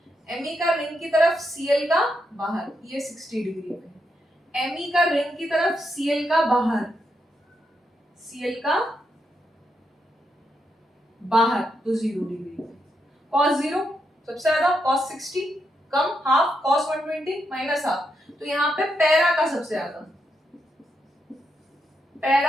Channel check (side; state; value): both; normal; correlation 0.82